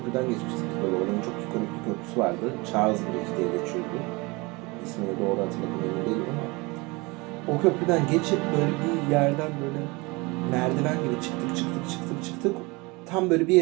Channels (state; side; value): quieter; left; 25.4 dB